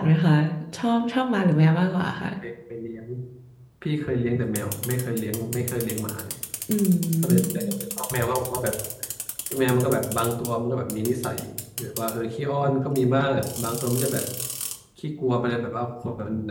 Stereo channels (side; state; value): both; identical; correlation 1.00